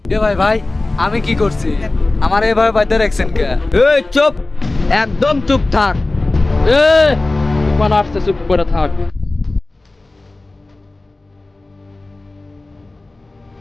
এ ভাই ভাই, আমি কি করছি? আমার এভাবে বাইতে রাখছেন কে? এই চুপ, একদম চুপ থাক। এ তুফান আসছে, চুপ করে থাক।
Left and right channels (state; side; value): quieter; right; 3.0 dB